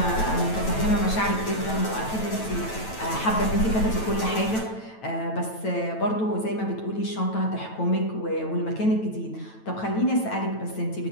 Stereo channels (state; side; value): late; right; 9.1 ms